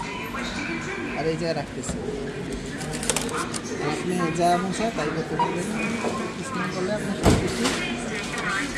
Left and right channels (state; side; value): identical; both; correlation 1.00